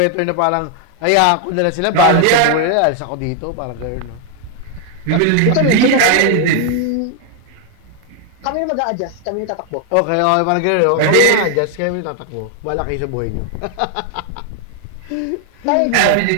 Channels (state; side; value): different; both; correlation 0.00